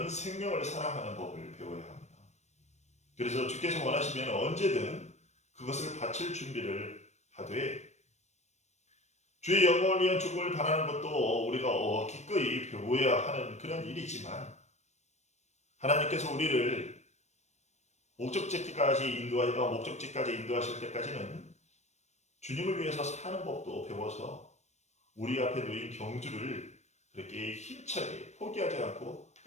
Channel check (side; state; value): right; late; 0.33 ms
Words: 생명을 사랑하는 법을 배워야 합니다. 그래서 주께서 원하시면 언제든 그것을 바칠 준비를 하되 주의 영광을 위한 죽음을 바라는 것도 우리가 기꺼이 배워야 하는 그런 일이지만 하나님께서 우리를 목적지까지 인도하실 때까지는 주님을 위해서 사는 법도 배워서 우리 앞에 놓인 경주를 그렇게 힘차게 포기하지 않고